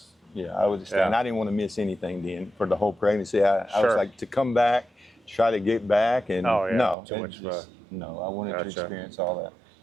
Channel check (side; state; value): left; drops out; at 7.0 s